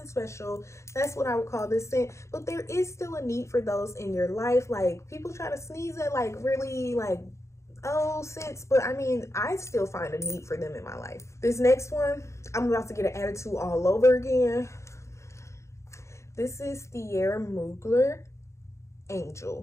special. That's what I would call this scent. But there is still a need for those in your life. Like, people try to sneeze at like really like old scents, but I mean, I still find a need for them in my life. This next one, I'm about to get an attitude all over again. This is Thierry Mugler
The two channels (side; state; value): right; late; 0.14 ms